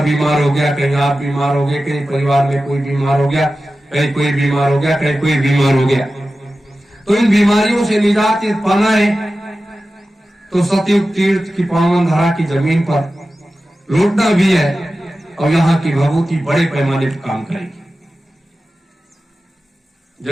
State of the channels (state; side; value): normal; both; correlation 0.94